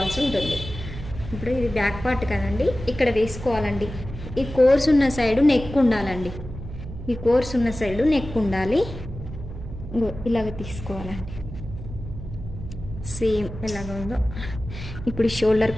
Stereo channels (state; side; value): noise; right; hum, 10 dB below the sound